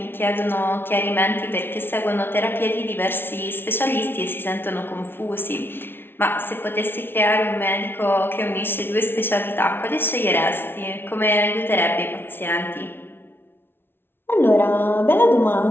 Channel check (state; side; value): late; right; 0.11 ms